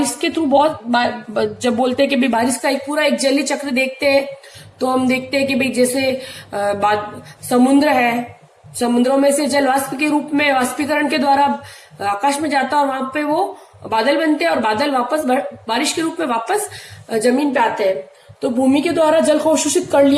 के थ्रू जब बोलते हैं कि भाई बारिश का एक पूरा एक जलीय चक्र देखते हैं, तो हम देखते हैं कि भाई जैसे समुद्र है, समुद्रों में से जल वाष्प के रूप में वाष्पीकरण के द्वारा आकाश में जाता है और वहां पे वो बादल बनते हैं और बादल वापस बारिश के रूप में वापस जमीन पे आते हैं। तो भूमि के द्वारा जल को अवशोषित कर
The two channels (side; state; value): both; identical; correlation 1.00